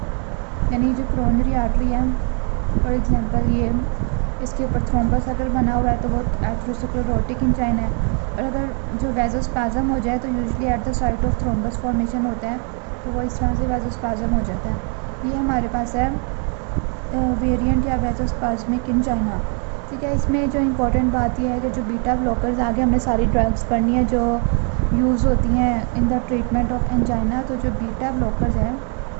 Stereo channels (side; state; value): left; quieter; 39.8 dB